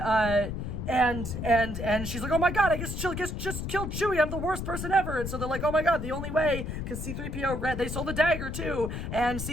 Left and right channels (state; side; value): noise; left; rumble, 5 dB below the sound